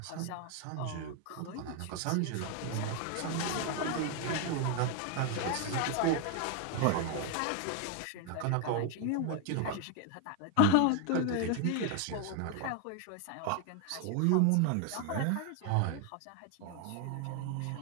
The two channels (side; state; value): both; different; correlation 0.01